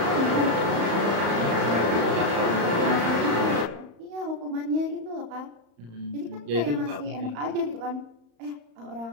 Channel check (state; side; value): late; left; 35 ms